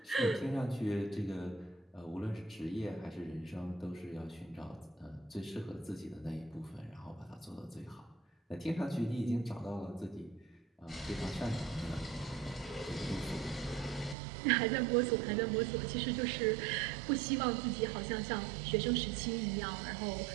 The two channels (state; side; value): drops out; left; at 14.2 s